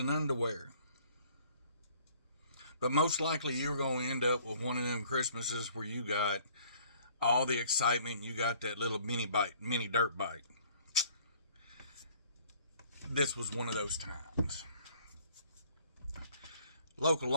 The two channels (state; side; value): inverted; both; correlation -0.57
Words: underwear. But most likely you're going to end up with one of them Christmases where you got all the excitement. You got that little mini dirt bike. This was one of those times. Local